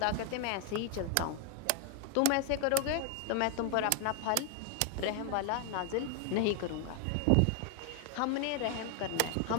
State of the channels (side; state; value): both; different; correlation 0.00